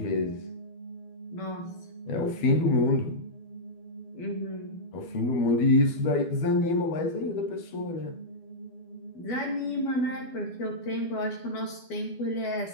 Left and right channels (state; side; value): late; right; 12 ms